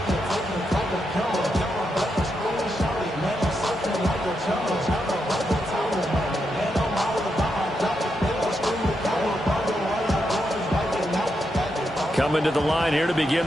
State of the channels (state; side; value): normal; both; correlation 0.83